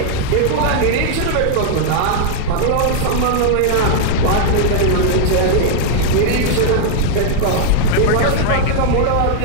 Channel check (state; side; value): different; both; correlation -0.01